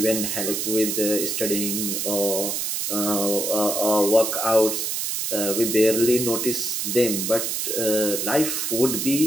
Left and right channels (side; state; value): right; noise; hiss, 1 dB below the sound